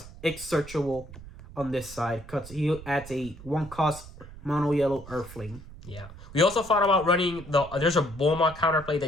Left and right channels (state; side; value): noise; right; rumble, 16 dB below the sound